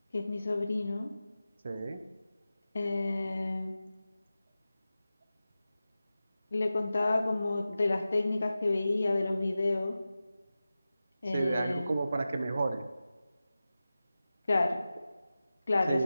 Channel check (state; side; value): inverted; both; correlation -0.95